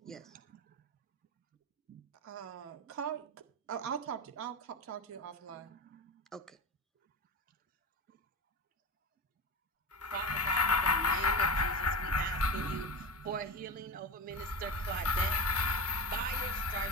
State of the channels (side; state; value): both; normal; correlation 0.25